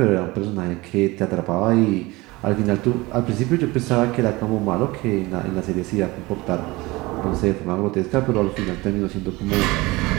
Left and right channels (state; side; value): quieter; left; 21.8 dB